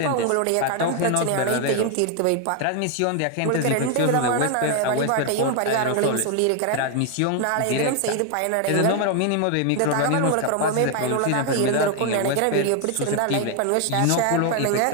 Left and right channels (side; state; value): both; different; correlation 0.01